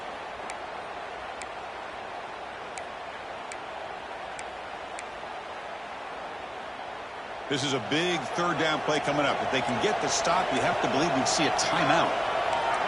This is a big 3rd down play coming up. If they can get the stop, you have to believe we'd see a timeout.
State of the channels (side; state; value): both; identical; correlation 1.00